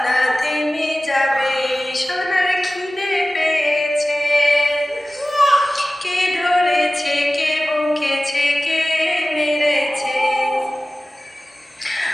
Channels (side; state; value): both; normal; correlation 0.96